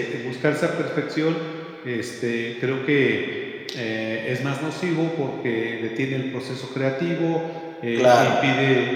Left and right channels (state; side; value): identical; both; correlation 1.00